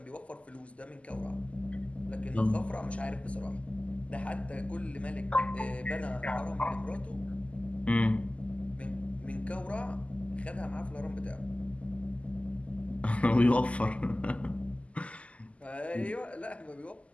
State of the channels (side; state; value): right; late; 0.063 ms